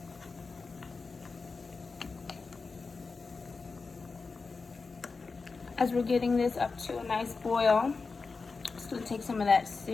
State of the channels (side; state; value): right; quieter; 4.4 dB